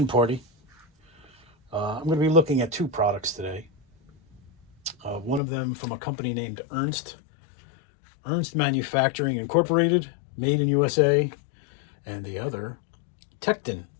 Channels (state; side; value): drops out; right; at 5.4 s